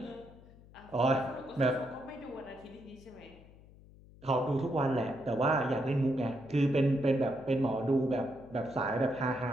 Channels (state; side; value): noise; left; hum, 22 dB below the sound